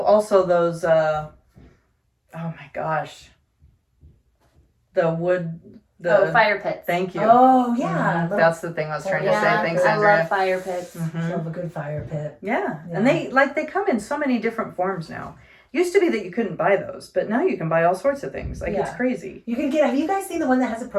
also those oh my gosh. The wood Fire pits. Thank you. Oh yeah, Mhm. That's the thing I was trying to say. Yeah, Thanks, I Andrea. love fire pits. Mhm. love a good fire pit. Yeah. Yeah. And they come in so many different forms now. Used to be that you couldn't buy those, but now you can buy all sorts of things. Like it's Yeah. crazy. You can get. Have you guys seen the one that has a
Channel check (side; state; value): both; identical; correlation 1.00